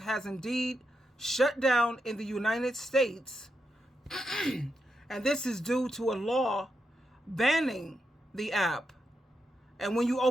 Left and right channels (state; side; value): normal; both; correlation 0.85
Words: indeed shut down in the United States. And this is due to a law banning the app. And when you